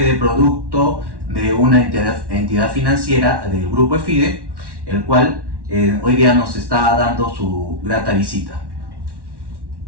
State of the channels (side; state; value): left; late; 1.1 ms